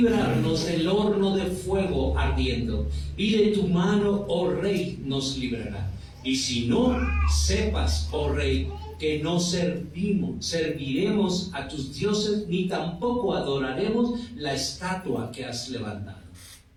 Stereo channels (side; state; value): both; identical; correlation 1.00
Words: del horno de fuego ardiendo, y de tu mano, oh rey, nos librará. Y si no, sepas, oh rey, que no serviremos a tus dioses, ni tampoco adoraremos la estatua que has levantado.